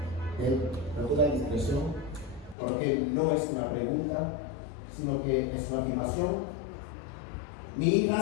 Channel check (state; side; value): drops out; right; at 2.6 s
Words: él con toda discreción, porque no es una pregunta, sino que es una afirmación. Mi